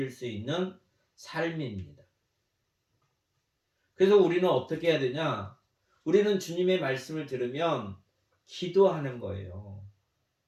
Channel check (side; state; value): both; identical; correlation 1.00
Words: 수 있는 삶입니다. 그래서 우리는 어떻게 해야 되냐? 우리는 주님의 말씀을 들으면 기도하는 거예요.